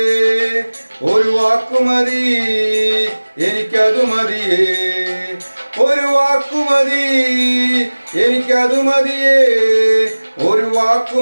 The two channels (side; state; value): both; inverted; correlation -1.00